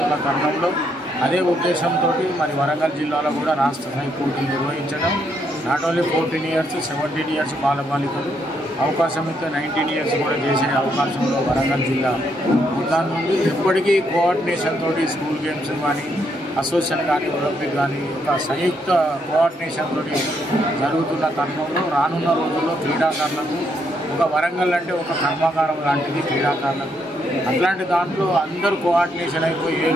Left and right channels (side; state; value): both; normal; correlation 0.75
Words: తరుణంలో అదే ఉద్దేశంతో మరి వరంగల్ జిల్లాలో కూడా రాష్ట్ర స్థాయి పోటీలు నిర్వహించడం, నాట్ ఓన్లీ 14 years 17 years బాలబాలికలు అవకాశం ఇస్తే 19 years కూడా చేసే అవకాశంలో వరంగల్ జిల్లా దాని నుండి ఎప్పటికీ కోఆర్డినేషన్ తోటి స్కూల్ గేమ్స్ కానీ అసోసియేషన్ కానీ ఒలింపిక్ కానీ ఒక సంయుక్త కోఆర్డినేషన్ తోటి జరుగుతున్న తరుణంలో రానున్న రోజుల్లో క్రీడాకారులకు ఒక వరంగల్ అంటే ఒక కర్మాగారం లాంటిది క్రీడాకారులకు. అట్లాంటి దాంట్లో అందరూ కోఆర్డినేషన్ అయిపోయి ఏ